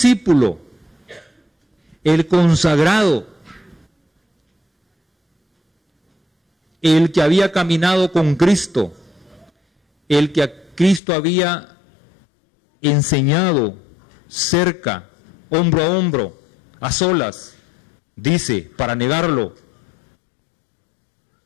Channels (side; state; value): right; drops out; at 11.0 s